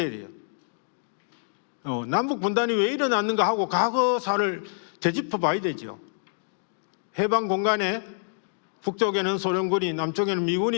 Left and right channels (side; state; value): right; silent; digital silence